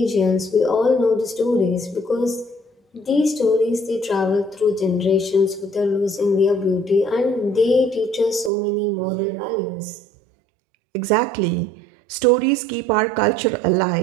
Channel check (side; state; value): left; drops out; at 8.5 s